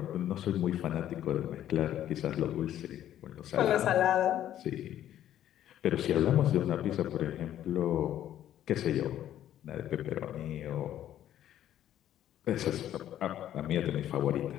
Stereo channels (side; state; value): right; quieter; 11.6 dB